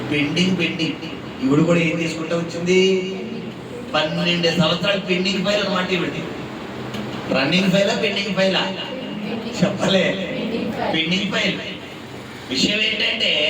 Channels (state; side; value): identical; both; correlation 1.00